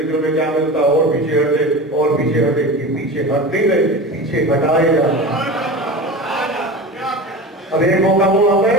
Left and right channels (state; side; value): normal; both; correlation 0.30